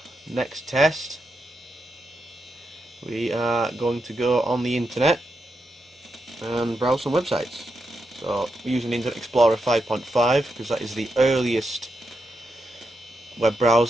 next test, we are going to go on the internet and browse some websites. So, we're using Internet Explorer 5.5 because that is the earliest web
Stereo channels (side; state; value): both; normal; correlation 0.85